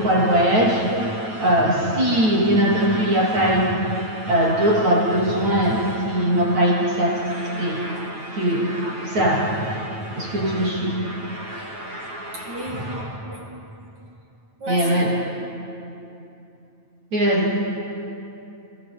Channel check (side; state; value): left; late; 9.1 ms